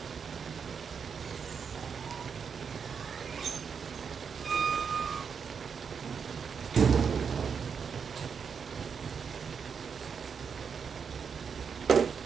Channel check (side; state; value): left; quieter; 6.4 dB